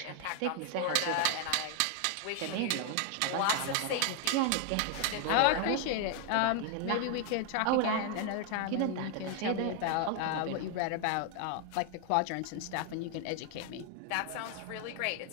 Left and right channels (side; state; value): both; different; correlation 0.00